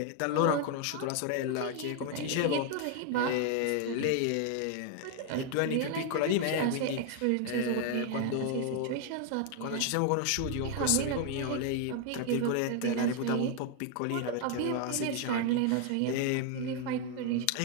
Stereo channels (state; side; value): different; both; correlation 0.00